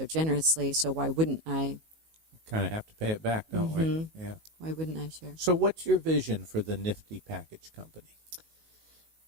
generously, so why wouldn't I? Kind of have to pay it back, don't we? Yeah. Why wouldn't I share? So what's your vision for the Nifty Package Company?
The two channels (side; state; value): left; late; 19 ms